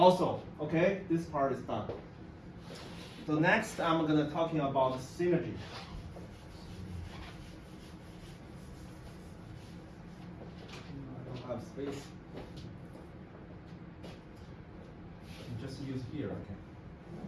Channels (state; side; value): identical; both; correlation 1.00